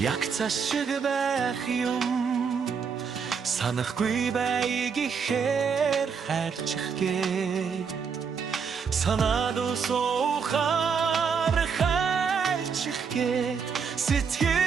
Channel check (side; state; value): left; quieter; 6.1 dB